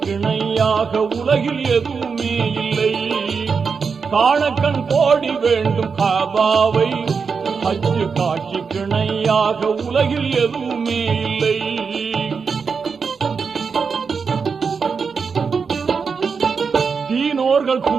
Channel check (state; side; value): quieter; left; 5.5 dB